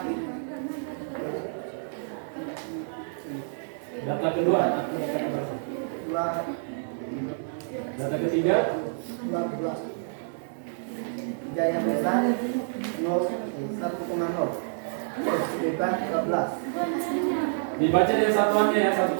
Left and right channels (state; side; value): silent; left; digital silence